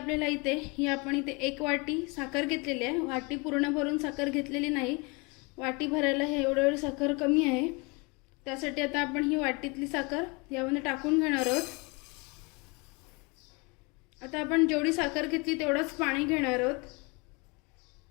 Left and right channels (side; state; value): right; quieter; 28.9 dB